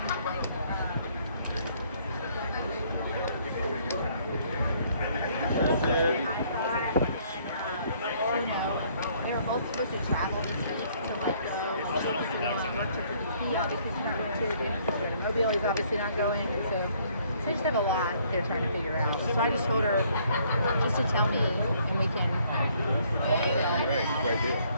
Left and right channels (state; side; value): inverted; both; correlation -0.64